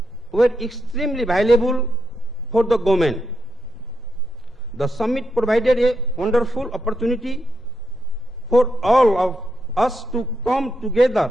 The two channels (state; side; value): normal; both; correlation 0.82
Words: were extremely valuable for the government. The summit provided a wonderful opportunity for all of us to come together